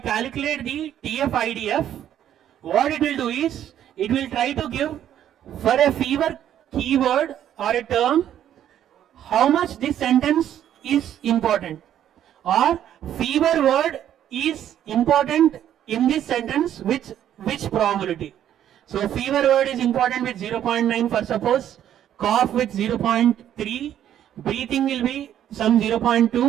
the TF-IDF, what it will do is, it will try to give for a fever keyword or a term, how much this sentence is important, or fever word is important in this sentence with which probability. So fever word is important with 0.9 for suppose, cough with 0.3, breathing will be some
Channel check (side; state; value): left; quieter; 10.7 dB